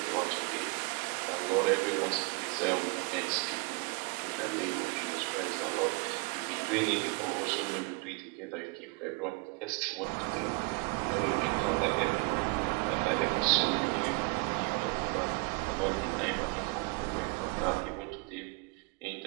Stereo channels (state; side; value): quieter; left; 29.7 dB